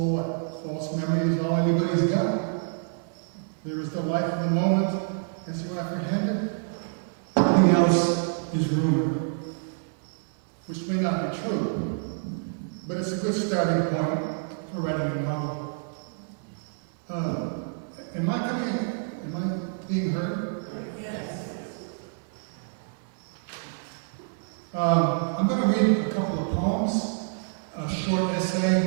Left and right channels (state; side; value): silent; left; 60 dB below the other